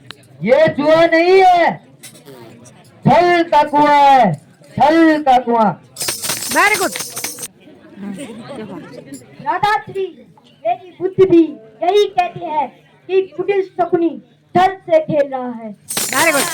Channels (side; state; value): both; identical; correlation 1.00